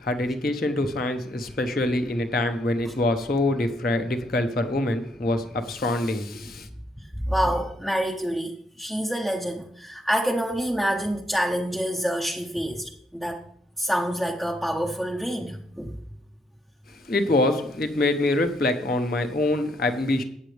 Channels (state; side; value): normal; both; correlation 0.74